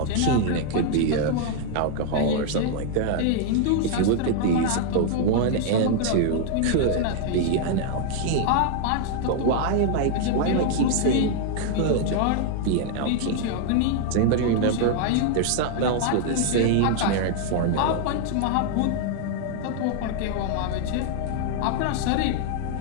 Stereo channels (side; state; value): both; different; correlation 0.00